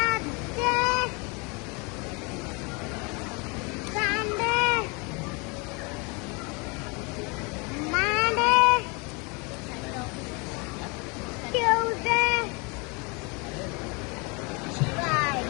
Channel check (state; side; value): quieter; right; 30.1 dB